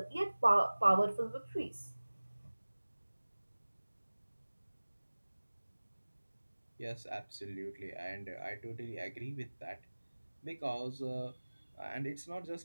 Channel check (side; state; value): both; inverted; correlation -1.00